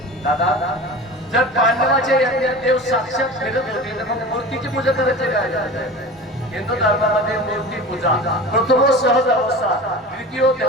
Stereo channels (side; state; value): both; normal; correlation 0.34